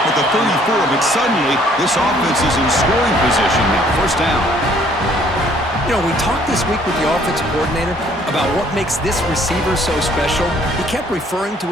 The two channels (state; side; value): normal; both; correlation 0.61